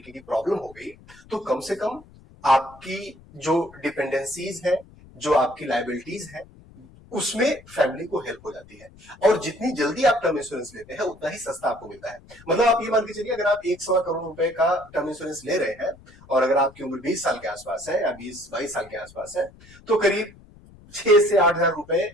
की प्रॉब्लम हो गई तो कम से कम आपकी जो डिपेंडेंसीज है, जो आपकी लाइबिलिटीज है, उसमें फैमिली को हेल्प हो जाती है। और जितनी जल्दी आप टर्म इंश्योरेंस लेते हैं उतना ही सस्ता आपको मिलता है। मतलब आप ये मान के चलिए, अगर आप 1 सवा करोड़ रुपए का टर्म इंश्योरेंस ले रहे हैं और अगर आपकी उम्र 20 साल के आसपास है या 20-22 साल के आसपास है, तो करीब 6 से 8 हजार रुपए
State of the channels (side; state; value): left; noise; rumble, 23 dB below the sound